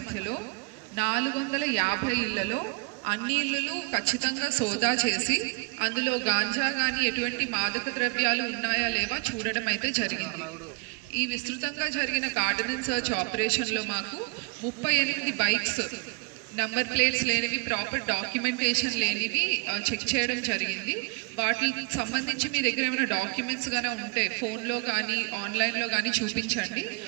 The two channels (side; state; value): left; quieter; 31.5 dB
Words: 450 ఇళ్లలో అన్ని ఇళ్లు ఖచ్చితంగా సోదా చేసి అందులో గాంజా కానీ ఎటువంటి మాదక ద్రవ్యాలు ఉన్నాయా లేవా చూడడం అయితే జరిగింది. ఈ విస్తృతంగా జరిగిన కార్డనెన్స్ సర్చ్ ఆపరేషన్లో మాకు 38 బైక్స్ నంబర్ ప్లేట్స్ లేనివి, ప్రాపర్ డాక్యుమెంటేషన్ లేనివి చెక్ చేయడం జరిగింది. వాటికి సంబంధించి మీ దగ్గర ఏమైనా డాక్యుమెంట్స్ కానీ ఉంటే ఫోన్లో కానీ ఆన్లైన్లో కానీ చూపించండి.